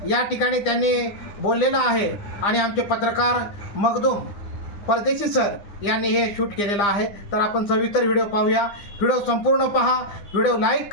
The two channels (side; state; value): right; late; 9.9 ms